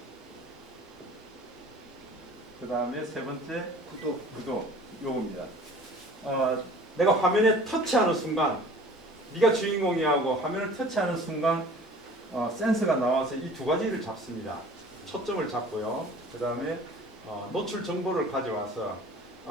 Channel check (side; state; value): both; normal; correlation 0.47